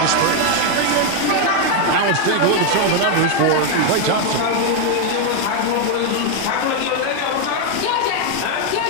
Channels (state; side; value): different; both; correlation 0.01